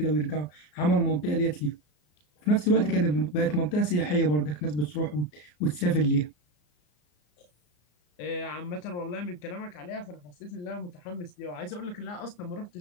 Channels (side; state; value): right; late; 34 ms